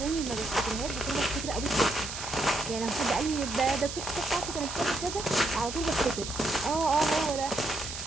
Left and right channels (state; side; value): noise; right; hiss, 7 dB below the sound